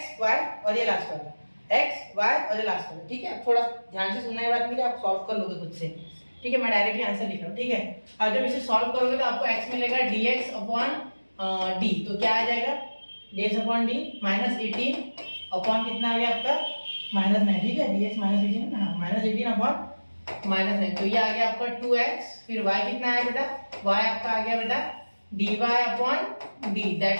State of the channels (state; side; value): inverted; both; correlation -1.00